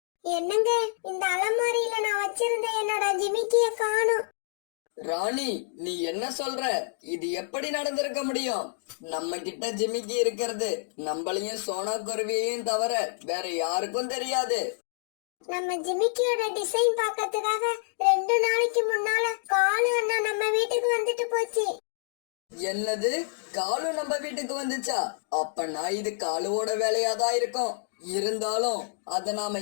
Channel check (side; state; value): right; silent; digital silence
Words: என்னங்க, இந்த அலமாரியில நான் வச்சிருந்த என்னோட ஜிமிக்கிய காணும். ராணி, நீ என்ன சொல்ற? இது எப்படி நடந்திருக்க முடியும்? நம்ம கிட்ட ஜிமிக்கி இருக்கிறது நம்மளையும் சோனா குருவியையும் தவிர வேற யாருக்கும் தெரியாது. நம்ம ஜிமிக்கியோட டிசைன் பார்க்கறதுக்காக 2 நாளைக்கு முன்னால காலு அண்ணா நம்ம வீட்டுக்கு வந்துட்டு போச்சு. என்னது, காலு நம்ம வீட்டுக்கு வந்துச்சா? அப்பனா இது காலுவோட வேலையாதான் இருக்கும். இருந்தாலும் அத நாம